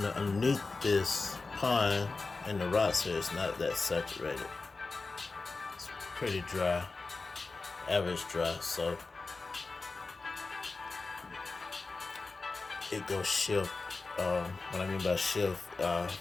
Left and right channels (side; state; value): right; quieter; 3.8 dB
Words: this pond and the rocks here, it's not that saturated. It's pretty dry, average dry, so it goes shift. What I mean by shift,